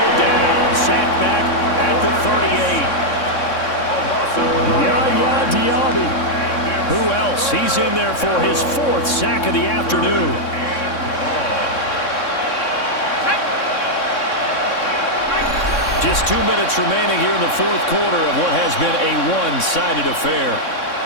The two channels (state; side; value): late; right; 3.6 ms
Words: down. Sacked back at the 38. Yaya Diaby. Who else? He's in there for his 4th sack of the afternoon. Just 2 minutes remaining here in the 4th quarter of what has been a one-sided affair.